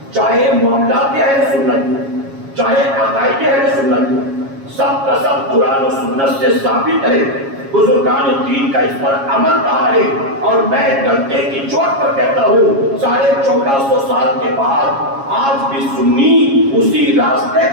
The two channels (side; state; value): left; late; 7.3 ms